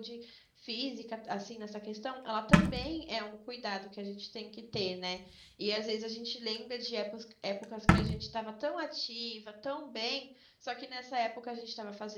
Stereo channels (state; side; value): identical; both; correlation 1.00